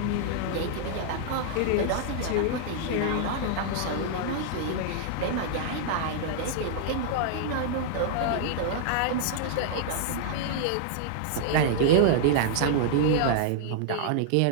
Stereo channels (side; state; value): both; different; correlation -0.01